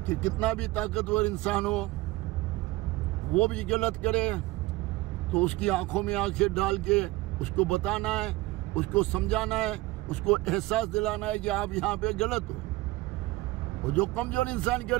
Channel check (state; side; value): quieter; left; 19.3 dB